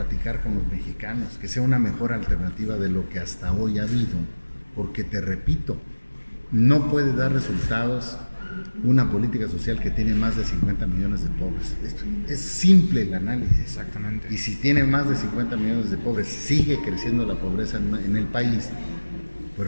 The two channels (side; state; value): both; inverted; correlation -1.00